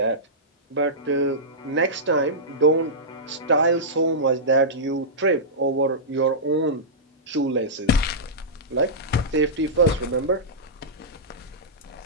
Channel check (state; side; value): normal; both; correlation -0.14